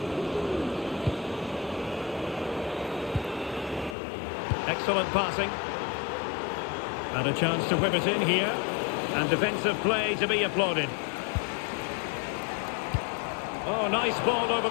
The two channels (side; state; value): right; drops out; at 4.0 s